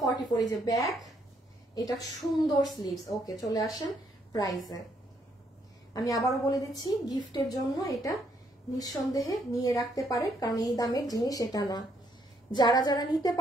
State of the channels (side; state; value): both; normal; correlation 0.71